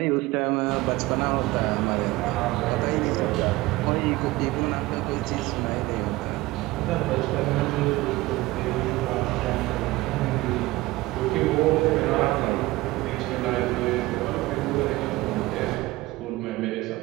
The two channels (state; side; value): quieter; left; 19.4 dB